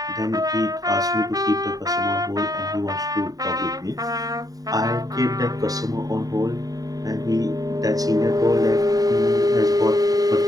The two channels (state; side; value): late; left; 0.18 ms